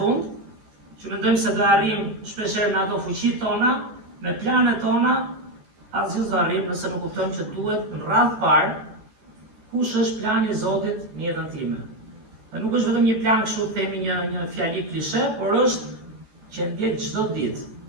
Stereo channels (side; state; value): left; late; 14 ms